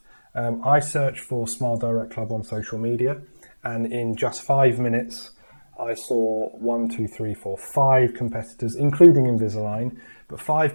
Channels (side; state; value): both; inverted; correlation -1.00